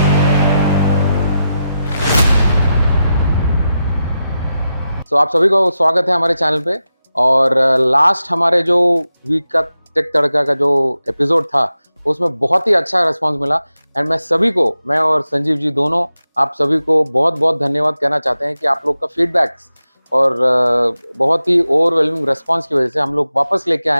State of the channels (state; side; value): inverted; both; correlation -0.90